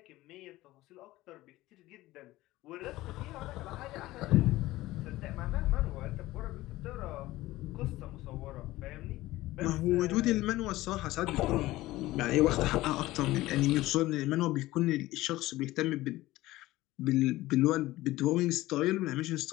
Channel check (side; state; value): right; quieter; 17.5 dB